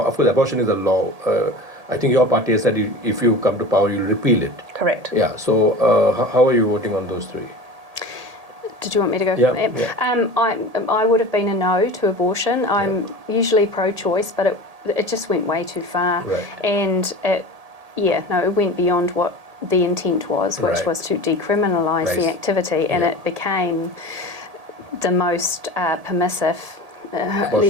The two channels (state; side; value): late; left; 1.8 ms